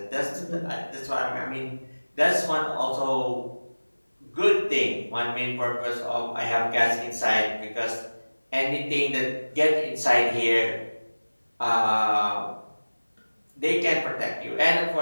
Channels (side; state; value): both; inverted; correlation -1.00